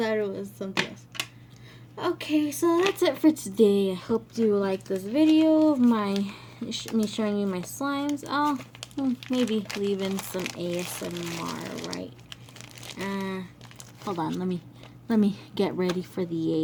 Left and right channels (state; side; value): identical; both; correlation 1.00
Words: it was something else. Okay, so that's it for today. I hope you like this video of me showing you my slimes. Oh, maybe leave in some ASMR, right? Hold on. Let me get ready for